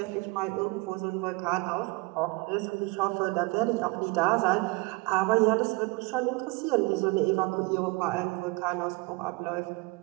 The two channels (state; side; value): quieter; left; 25.3 dB